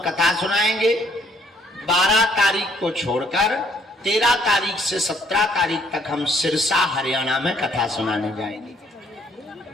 कथा सुनाएंगे। 12 तारीख को छोड़कर 13 तारीख से 17 तारीख तक हम सिरसा हरियाणा में कथा सुनाने जाएंगे।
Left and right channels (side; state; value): both; normal; correlation 0.65